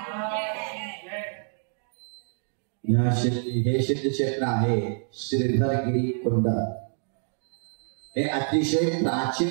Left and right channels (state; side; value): silent; left; digital silence